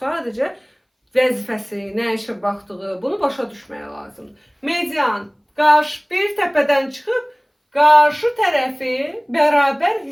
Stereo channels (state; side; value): identical; both; correlation 1.00